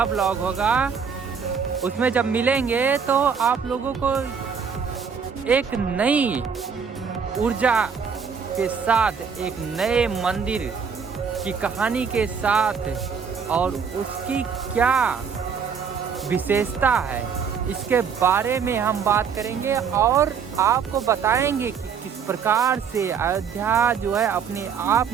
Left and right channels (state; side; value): quieter; left; 6.5 dB